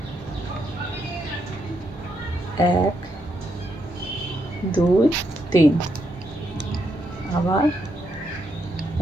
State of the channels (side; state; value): both; normal; correlation 0.79